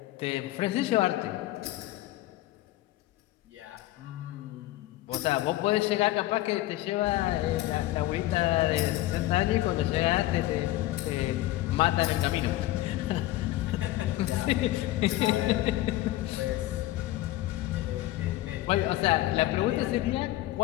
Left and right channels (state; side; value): quieter; right; 16.0 dB